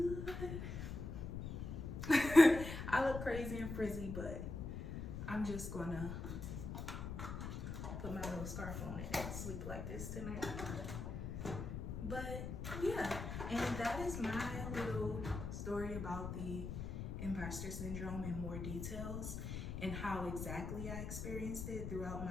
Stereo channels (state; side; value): noise; left; rumble, 5 dB below the sound